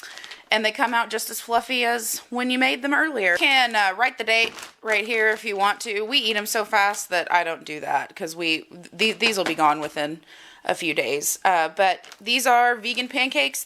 And they come out just as fluffy as when you made them earlier. You can write the date right here if you want to. We eat them so fast that I don't do that because these will be gone within a few days. But these are vegan pancakes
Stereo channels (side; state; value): both; identical; correlation 1.00